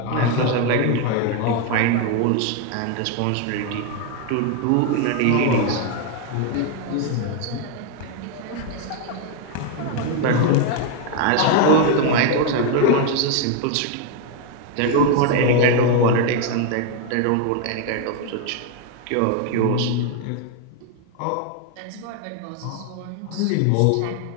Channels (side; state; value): both; different; correlation 0.01